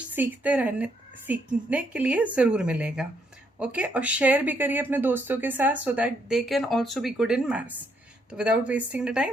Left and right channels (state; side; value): normal; both; correlation 0.73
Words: सीखने के लिए ज़रूर मिलेगा। ओके, और शेयर भी करिए अपने दोस्तों के साथ so that they can also be good in maths. तो without wasting the